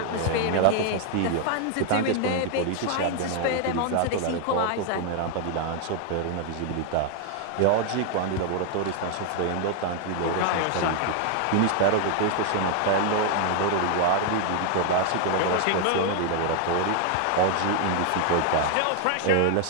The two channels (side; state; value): both; different; correlation 0.00